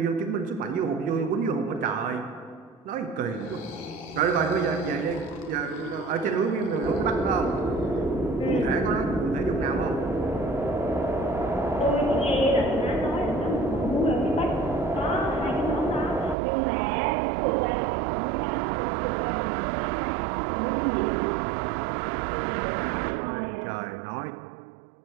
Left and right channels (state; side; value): drops out; left; at 16.4 s